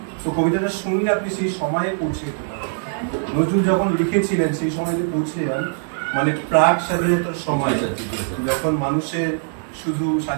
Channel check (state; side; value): silent; left; digital silence